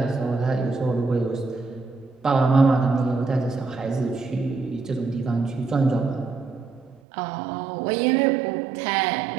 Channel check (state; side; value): drops out; left; at 7.0 s